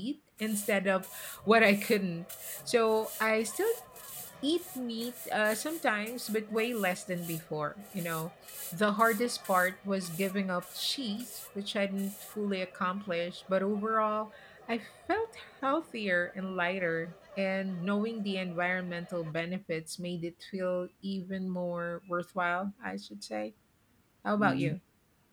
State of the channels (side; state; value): both; identical; correlation 1.00